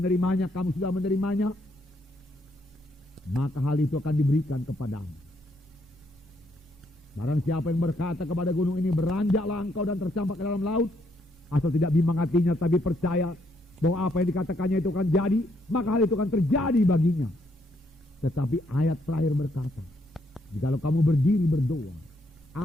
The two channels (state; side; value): normal; both; correlation 0.73